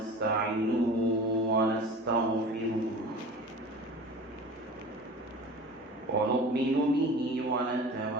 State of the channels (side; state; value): both; normal; correlation 0.38